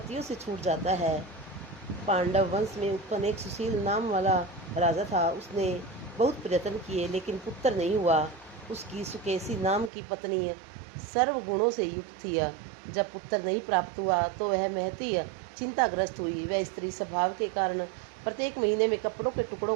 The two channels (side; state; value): left; drops out; at 9.9 s